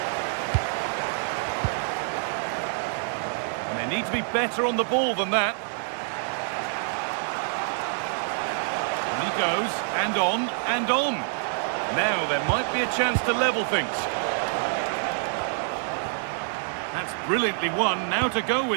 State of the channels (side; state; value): left; silent; 60 dB below the other